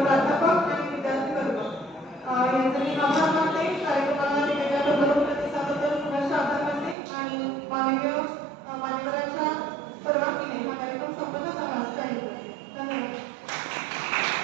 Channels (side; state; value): left; drops out; at 7.0 s